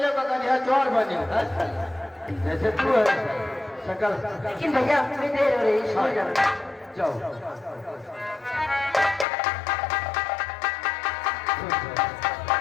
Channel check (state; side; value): drops out; right; at 9.2 s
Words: करिया चोर बनियो। जैसे तू है शंकर। लेकिन भैया मैं देर हो रही, स्कूल जाना। जाओ